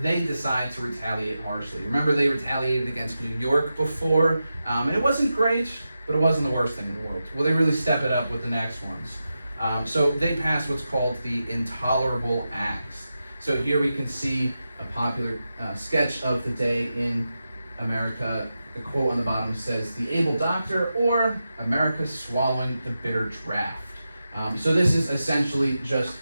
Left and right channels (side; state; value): both; inverted; correlation -0.90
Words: they decide to retaliate harshly. Remember, they retaliated against New York before, and it wasn't great, but it wasn't the worst thing in the world. Well, they really step it up with the next ones. So they pass what's called the Intolerable Acts. So here we can see a popular sketch of the day in America. The quote on the bottom says, "The able doctor," or "America swallowing the bitter draft." So this is essentially just